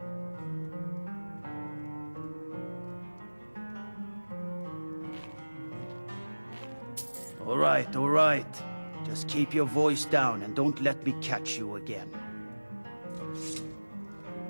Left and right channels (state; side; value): inverted; both; correlation -1.00